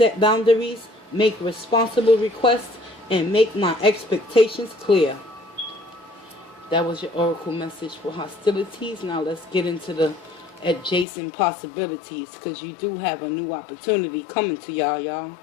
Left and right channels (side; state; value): right; drops out; at 11.1 s